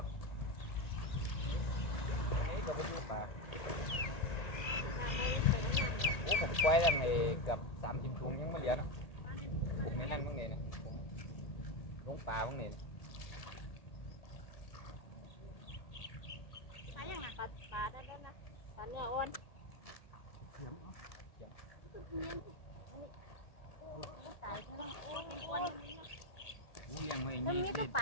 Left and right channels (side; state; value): right; late; 1.9 ms